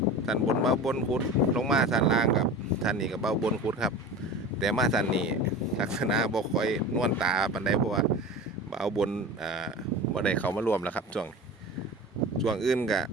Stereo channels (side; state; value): both; normal; correlation 0.33